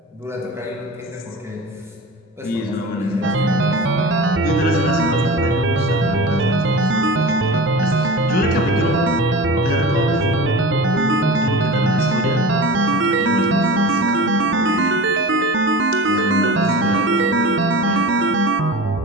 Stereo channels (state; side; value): normal; both; correlation 0.34